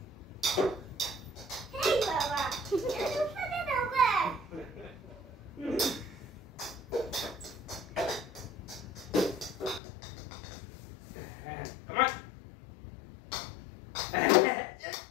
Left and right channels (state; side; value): drops out; right; at 9.8 s